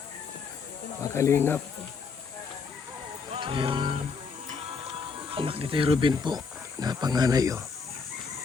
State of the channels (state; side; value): quieter; right; 5.3 dB